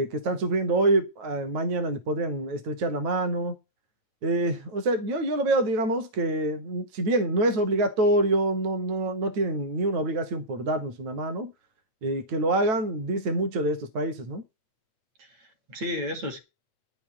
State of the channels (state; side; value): late; left; 9.1 ms